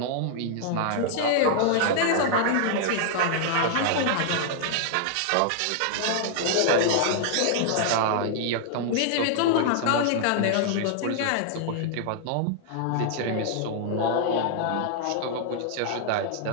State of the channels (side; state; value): both; different; correlation -0.01